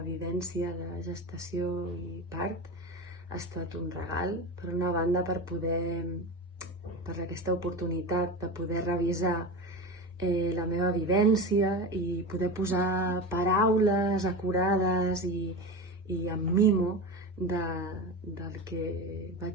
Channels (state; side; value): normal; both; correlation 0.25